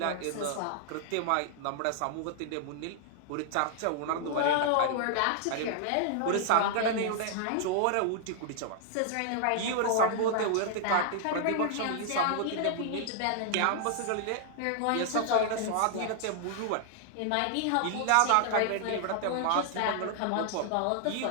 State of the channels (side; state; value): both; different; correlation -0.01